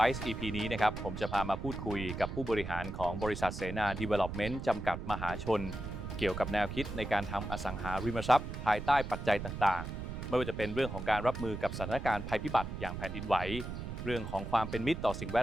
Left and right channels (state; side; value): noise; right; rumble, 7 dB below the sound